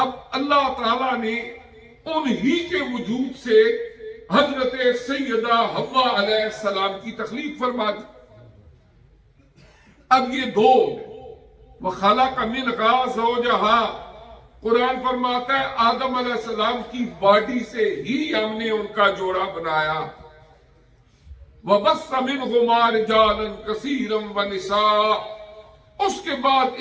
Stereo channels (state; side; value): identical; both; correlation 1.00